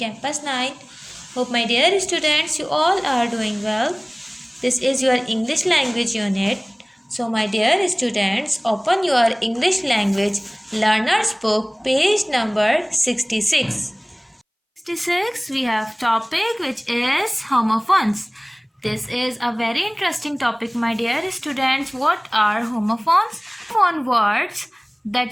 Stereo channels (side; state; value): both; identical; correlation 1.00